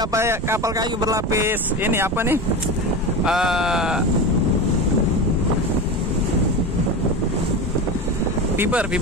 kapal kayu berlapis. Ini apa nih? Fiber.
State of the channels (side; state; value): both; normal; correlation 0.24